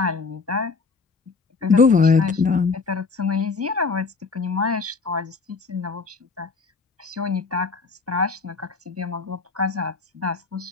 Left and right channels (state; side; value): quieter; right; 4.5 dB